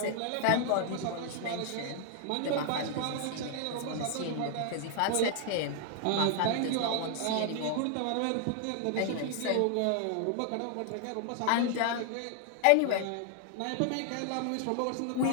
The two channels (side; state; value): both; different; correlation 0.00